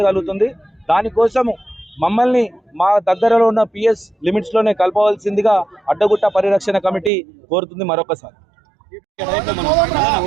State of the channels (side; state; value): left; drops out; at 7.1 s